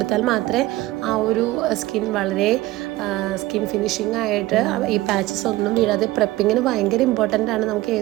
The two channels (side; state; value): left; quieter; 17.9 dB